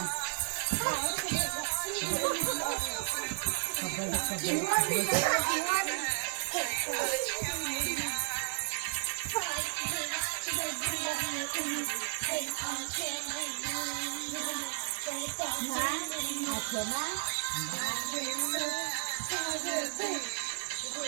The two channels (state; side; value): silent; left; 56 dB below the other